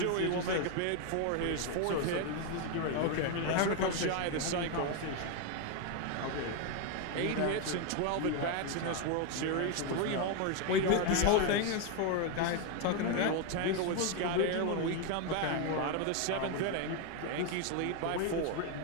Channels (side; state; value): both; different; correlation 0.01